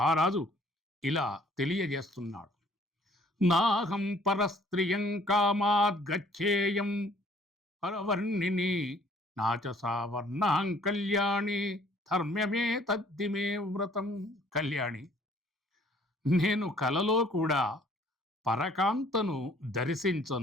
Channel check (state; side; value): normal; both; correlation 0.58